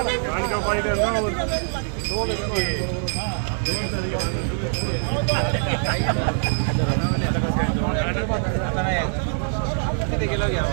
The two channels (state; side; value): silent; left; digital silence